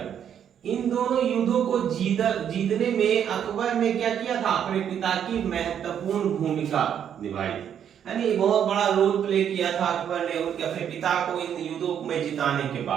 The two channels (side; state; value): left; quieter; 8.9 dB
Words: इन दोनों युद्धों को जीतने में अकबर ने क्या किया था? अपने पिता की महत्वपूर्ण भूमिका निभाई थी, यानी बहुत बड़ा रोल प्ले किया था अकबर ने उनके अपने पिता को इन युद्धों में जिताने के